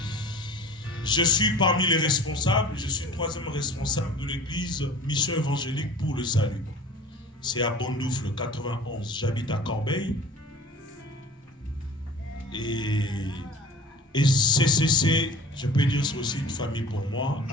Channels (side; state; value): both; normal; correlation 0.42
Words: Je suis parmi les responsables, je suis 3e responsable de l'église Mission Évangélique pour le Salut. C'est à Bondoufle, 91. J'habite à Corbeil. Et CCC, je peux dire, c'est aussi une famille pour moi.